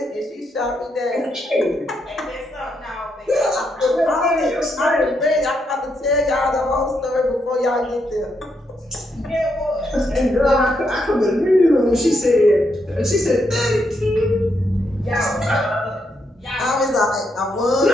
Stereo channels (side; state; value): both; normal; correlation 0.79